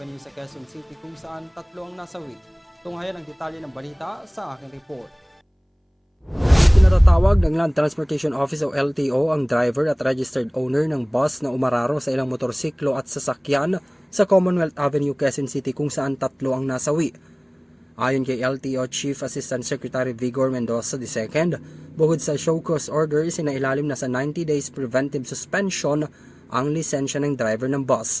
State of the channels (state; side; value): identical; both; correlation 1.00